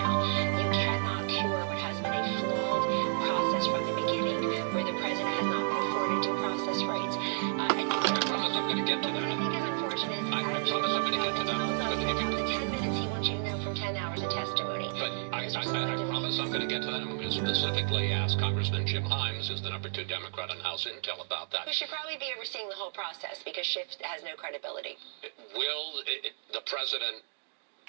You cannot cure what has been a flawed process from the beginning, where the president has not been afforded due process rights. I promise I'm going to get to What I that. think is unfortunate is I promise I'm going to get to that. about the 10 minutes he wants you to know from 10 hours of testimony. But I promise I'm going to get to that. I'm going to specifically ask Congressman Jim Himes, who's the #2 Democrat on House Intel, about that. Who should probably be overseeing the whole process because Schiff has no credibility. Will the president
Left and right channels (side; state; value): left; silent; digital silence